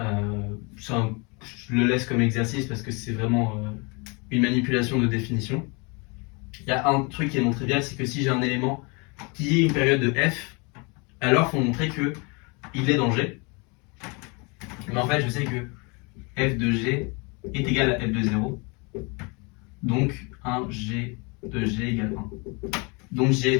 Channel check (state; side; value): quieter; right; 30.4 dB